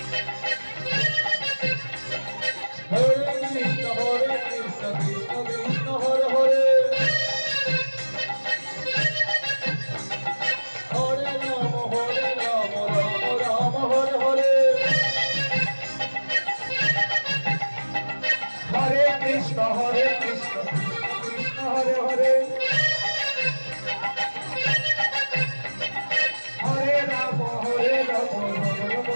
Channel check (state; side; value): inverted; both; correlation -1.00